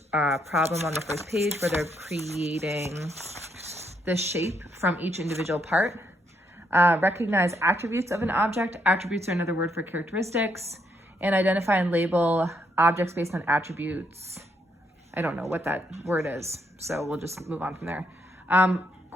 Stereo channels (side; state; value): both; normal; correlation 0.75